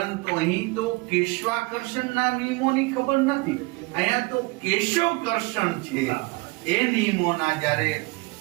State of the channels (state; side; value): quieter; left; 25.7 dB